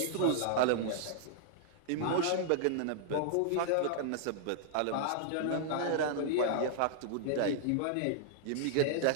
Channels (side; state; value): both; different; correlation -0.01